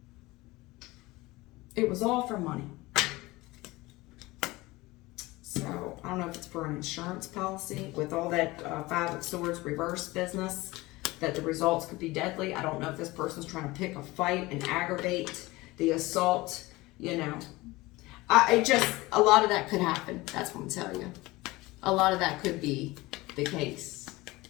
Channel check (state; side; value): quieter; right; 20.8 dB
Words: It was all for money. So, I don't know if it's for an insurance policy with all that 5 of Swords reverse business, that the results could be deadly. I don't know if this person's trying to pick a fight and aggravate the assault, you know. A lot of that could happen. That's what I'm telling you. A lot of that could be the case.